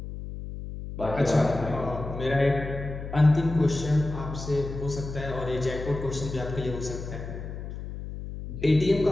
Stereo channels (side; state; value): left; noise; hum, 9 dB below the sound